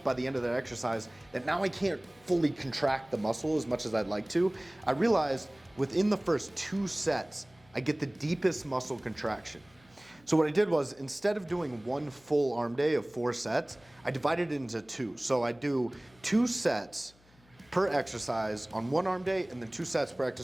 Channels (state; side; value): noise; left; hum, 29 dB below the sound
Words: by the end of that exercise that now I can't fully contract the muscle as much as I'd like to. I realized within the first 2 sets, I get the deepest muscle contraction. So what I did was, instead of doing one full arm day of 4 sets, I divided it into 2. So I do 2 sets per exercise on one arm day and then 2 sets per